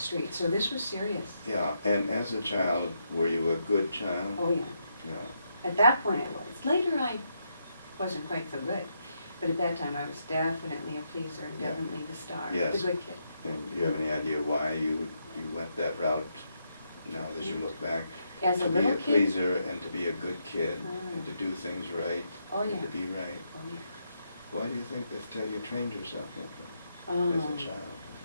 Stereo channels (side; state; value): both; inverted; correlation -0.80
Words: street. So this was serious. Yeah, and as a child, were you a good child? Oh, yeah. Yeah. At that point I was. Later I wasn't quite so good. But at that time I was definitely a pleaser and Yeah. definitely the star. Yes. The good kid. And do you have any idea why you went that route now as you look back? As a To be little a kid? pleaser and to be a good kid Mm. and to do things right Oh, and yeah. to be right. Oh, yeah. Why do you think that you trained yourself that way as a child?